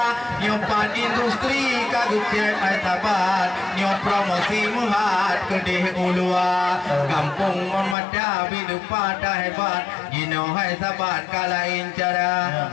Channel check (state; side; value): drops out; right; at 8.0 s